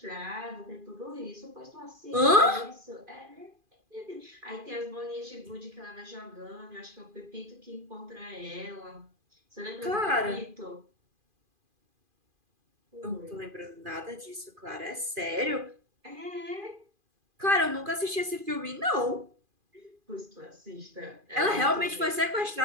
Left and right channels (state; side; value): late; left; 2.4 ms